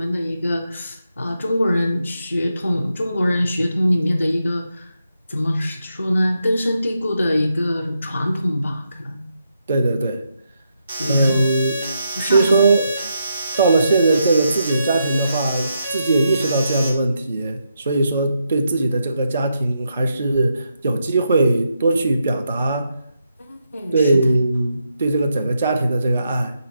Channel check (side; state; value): both; inverted; correlation -0.82